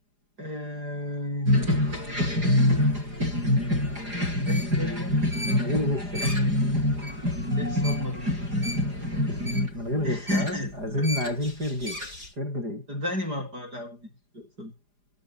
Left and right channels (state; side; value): late; left; 4.9 ms